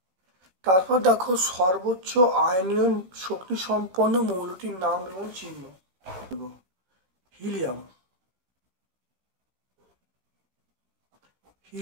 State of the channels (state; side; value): late; left; 16 ms